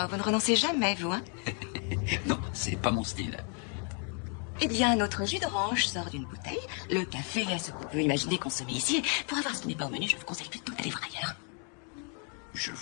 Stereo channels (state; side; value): quieter; right; 39.9 dB